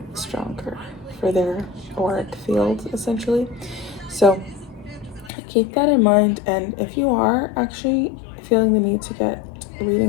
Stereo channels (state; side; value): drops out; right; at 5.3 s